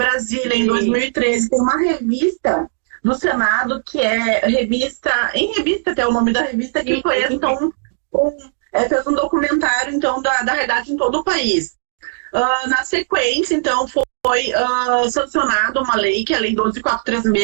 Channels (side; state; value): left; silent; digital silence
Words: em 2013, tem uma revista do Senado, que é revista até o nome da revista, que foi, então, fez um documentário, então, da realidade em todo o país. Na sequência, então, foi sancionada uma lei, que é a Lei